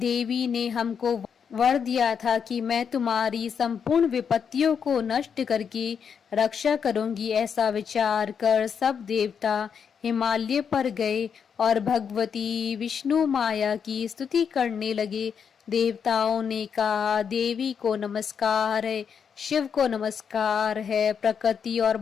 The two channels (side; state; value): right; quieter; 7.0 dB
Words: ने हमको वर दिया था कि मैं तुम्हारी संपूर्ण विपत्तियों को नष्ट करके रक्षा करूंगी। ऐसा विचार कर सब देवता हिमालय पर गए और भगवती विष्णु माया की स्तुति करने लगे। देवताओं ने कहा, देवी को नमस्कार है, शिव को नमस्कार है, प्रकृति और